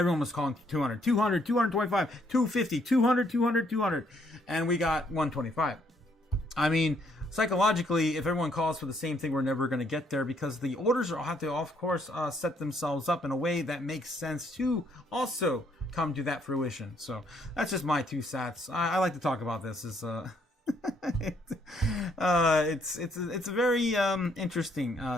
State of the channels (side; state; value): both; normal; correlation 0.69